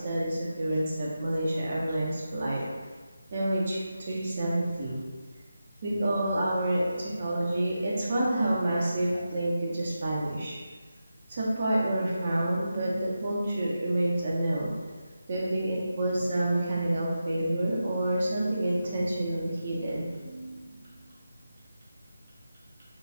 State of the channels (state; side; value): inverted; both; correlation -0.90